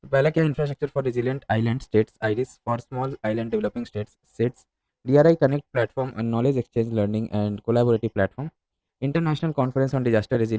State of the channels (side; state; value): both; identical; correlation 1.00